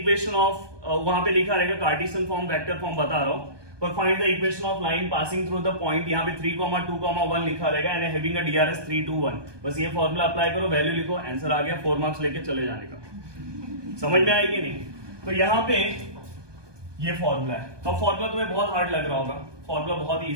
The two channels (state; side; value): late; left; 1.2 ms